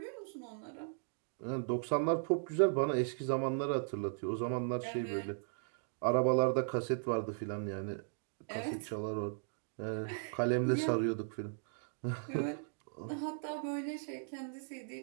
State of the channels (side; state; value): left; silent; digital silence